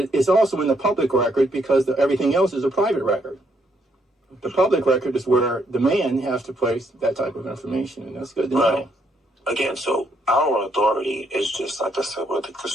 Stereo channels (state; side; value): normal; both; correlation 0.73